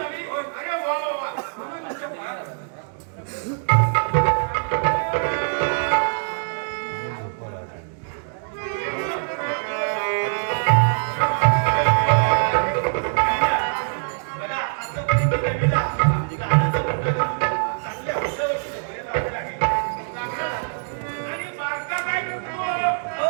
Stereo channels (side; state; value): left; silent; digital silence